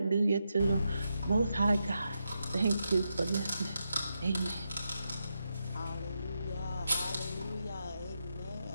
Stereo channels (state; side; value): inverted; both; correlation -0.86